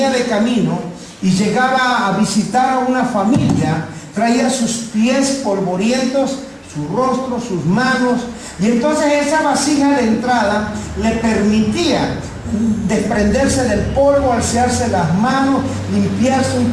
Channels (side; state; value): both; identical; correlation 1.00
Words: de camino y llegaba a visitar a una familia, traía sus pies polvorientos, su rostro, sus manos, y entonces esa vasija de entrada le permitía desprenderse del polvo, alzarse las manos, limpiarse un